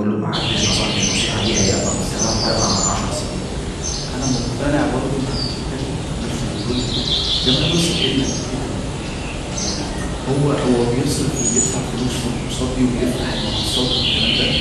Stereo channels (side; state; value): both; identical; correlation 1.00